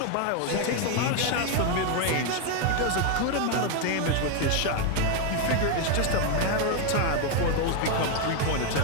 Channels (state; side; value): different; both; correlation 0.01